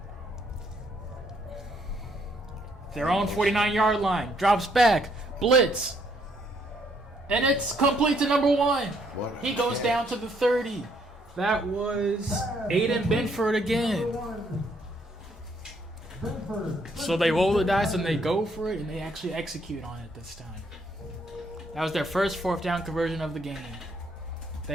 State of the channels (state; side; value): normal; both; correlation 0.70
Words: Their own 49-yard line. Drops back. Blitz. And it's complete to number 1. What He goes down to the 30. That was Aiden Benford again. So they roll the dice and they go for it, and they actually execute on it this time. That was their first 4th down conversion of the game. They